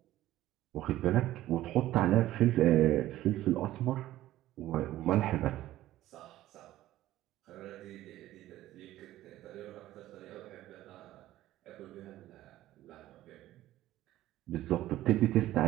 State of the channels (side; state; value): left; quieter; 14.7 dB